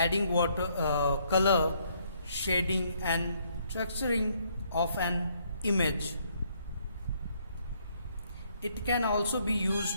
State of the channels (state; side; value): inverted; both; correlation -0.69